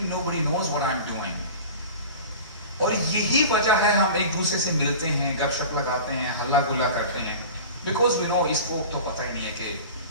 nobody knows what I'm doing. اور یہی وجہ ہے ہم ایک دوسرے سے ملتے ہیں, گپ شپ لگاتے ہیں, ہلا گلا کرتے ہیں, because we know اس کو تو پتہ ہی نہیں ہے کہ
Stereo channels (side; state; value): both; inverted; correlation -0.36